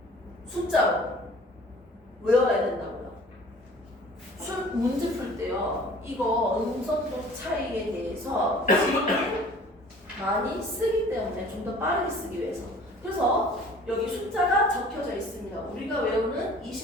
숫자로 외워야 된다고요. 문제 풀 때요, 이거 음성도 차이에 대해서 지금 많이 쓰기 때문에 좀 더 빠르게 쓰기 위해서. 그래서 여기 숫자가 적혀져 있습니다. 우리가 외우는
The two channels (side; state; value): both; normal; correlation 0.49